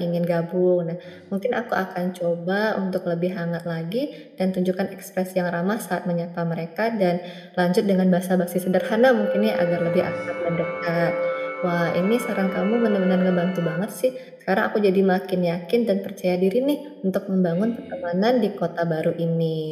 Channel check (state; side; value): identical; both; correlation 1.00